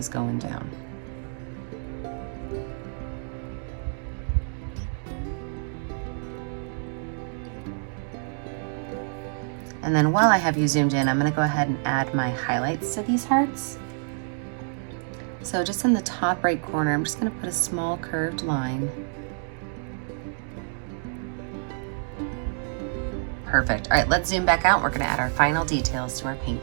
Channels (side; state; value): left; silent; 60 dB below the other